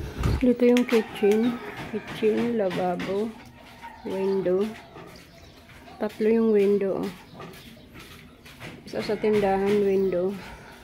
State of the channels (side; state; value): both; identical; correlation 1.00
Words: Dito yung kitchen. Kitchen, lababo, window. Tatlo yung window. Isa sa tindahan, window.